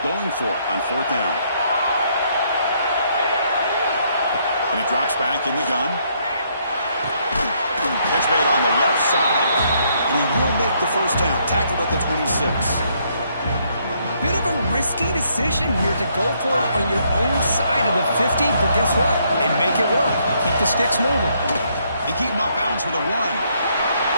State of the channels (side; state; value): both; inverted; correlation -0.71